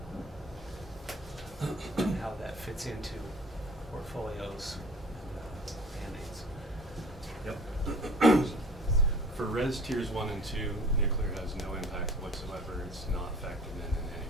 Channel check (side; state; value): both; normal; correlation 0.46